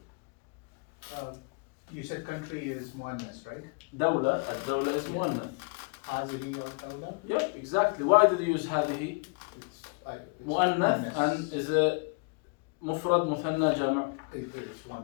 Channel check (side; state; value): right; quieter; 33.2 dB